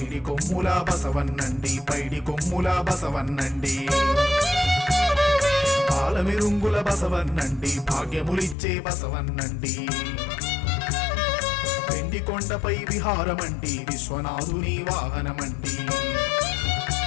కొమ్ముల బసవన్నండి, పైడి కొమ్ముల బసవన్నండి. పాలమిరుంగుల బసవన్నండి, భాగ్యములిచ్చే బసవన్నండి. వెండి కొండపై విహారమండి, విశ్వనాథుని వాహనమండి.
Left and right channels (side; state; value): right; drops out; at 8.6 s